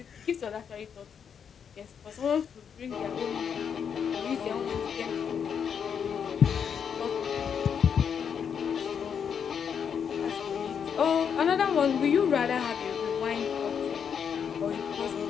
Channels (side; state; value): right; quieter; 7.4 dB